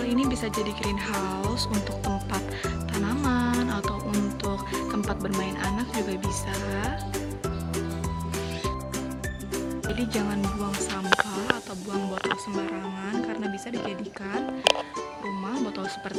ini bisa jadi greenhouse untuk tempat tanaman atau untuk tempat bermain anak juga bisa. Jadi jangan buang sampah atau buang botol sembarangan karena bisa dijadikan rumah botol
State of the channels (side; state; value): both; identical; correlation 1.00